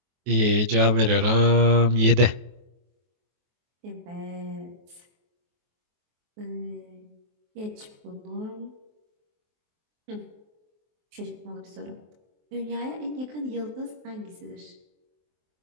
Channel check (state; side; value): late; left; 23 ms